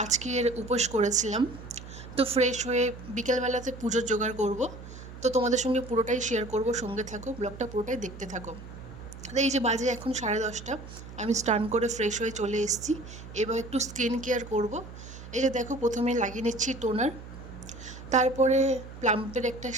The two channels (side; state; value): right; noise; hum, 14 dB below the sound